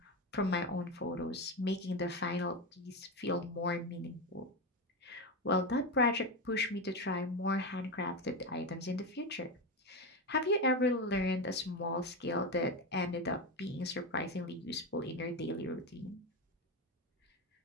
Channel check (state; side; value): normal; both; correlation 0.15